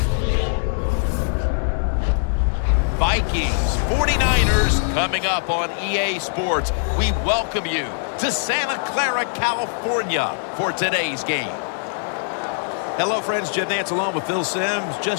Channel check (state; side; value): silent; right; digital silence